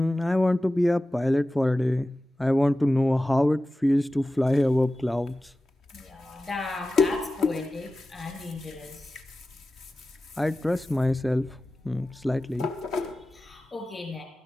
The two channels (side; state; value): both; normal; correlation 0.95